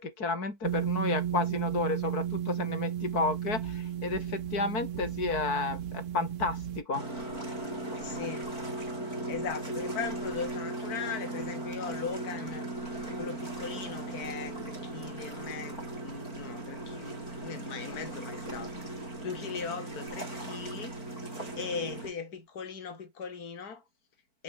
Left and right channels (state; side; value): late; right; 4.5 ms